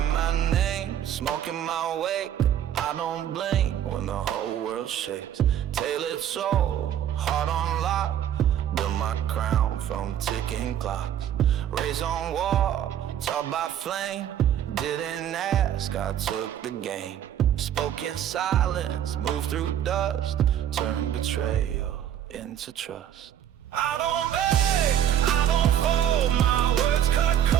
my name, smoking my wake. I don't blink when the whole world shakes. Tailored soul, heart on lock. Build my crown from ticking clocks. Raised on wall, taught by flame. Didn't ask, I took the game. Spoke in silence, moved through dust. Turned betrayal into trust. I don't beg, I don't fold. My words cut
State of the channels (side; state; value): left; quieter; 10.4 dB